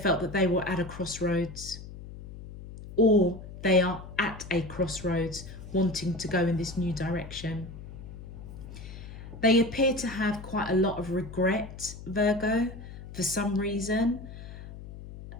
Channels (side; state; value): left; noise; hum, 13 dB below the sound